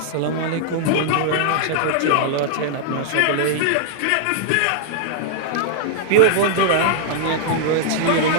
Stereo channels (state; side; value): different; both; correlation -0.01